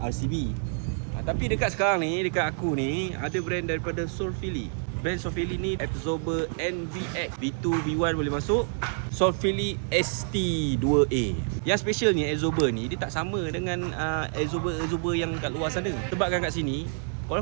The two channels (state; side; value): silent; left; 60 dB below the other